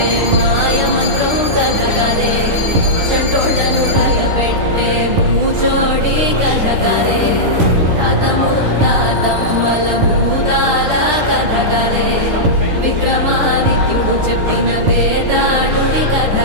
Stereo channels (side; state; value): left; late; 10 ms